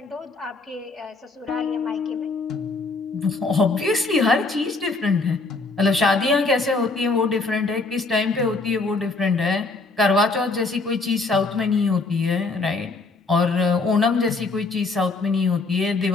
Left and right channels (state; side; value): quieter; right; 3.7 dB